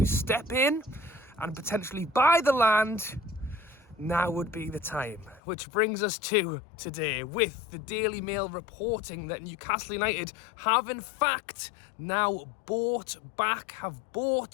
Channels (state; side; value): drops out; right; at 5.4 s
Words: step in and potentially buy the land, now would be the time. Which brings us to today, with the Daily Mail reporting that Newcastle United have in fact now bought